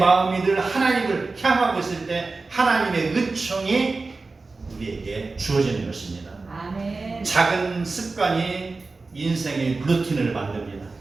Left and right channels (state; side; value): quieter; left; 3.8 dB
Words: 늘 하나님을 향하고 있을 때 하나님의 은총이 우리에게 주어지는 것입니다. 아멘. 작은 습관이 인생의 루틴을 만듭니다.